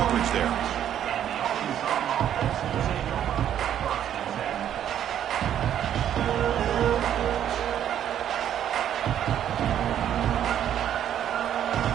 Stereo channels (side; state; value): left; quieter; 10.3 dB